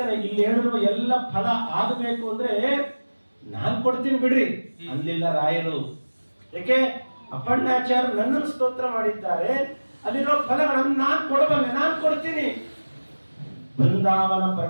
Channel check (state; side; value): inverted; both; correlation -1.00